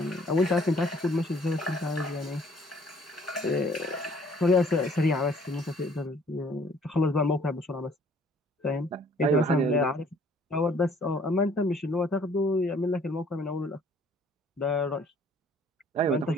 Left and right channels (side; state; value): both; normal; correlation 0.58